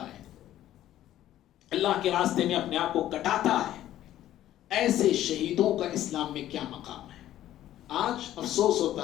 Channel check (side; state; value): right; quieter; 12.9 dB